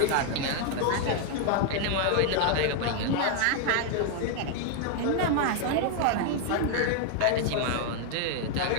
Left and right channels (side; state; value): both; different; correlation 0.00